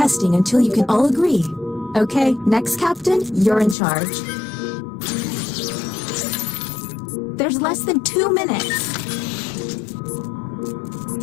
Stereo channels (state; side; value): drops out; right; at 3.8 s